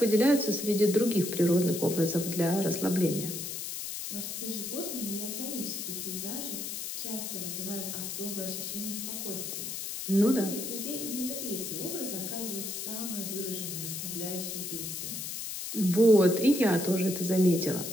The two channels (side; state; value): left; noise; hiss, 6 dB below the sound